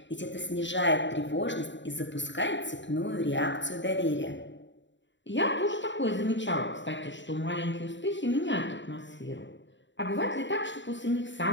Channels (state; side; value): late; right; 0.54 ms